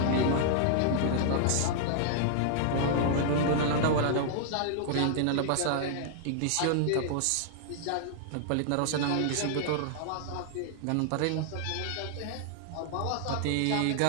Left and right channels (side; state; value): both; different; correlation -0.01